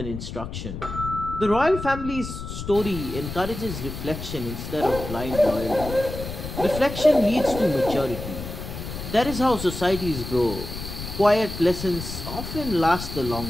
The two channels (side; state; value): left; noise; rumble, 8 dB below the sound